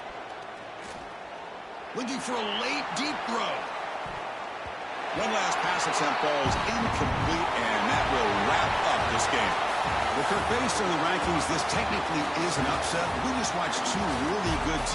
Looking for a late, deep throw. One last pass attempt falls incomplete, and that will wrap up this game. Well, Kirk, based on the rankings, this technically is an upset. We just watched 2 really good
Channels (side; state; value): both; identical; correlation 1.00